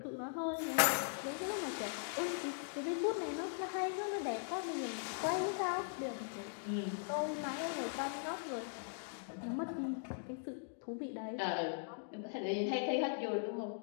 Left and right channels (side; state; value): right; silent; digital silence